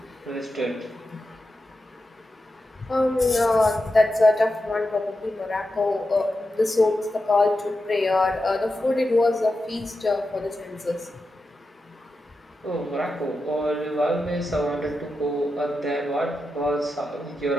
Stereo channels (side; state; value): both; normal; correlation 0.90